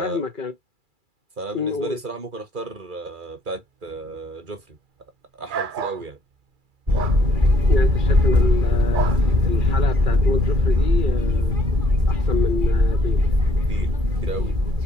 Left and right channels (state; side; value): late; left; 2.3 ms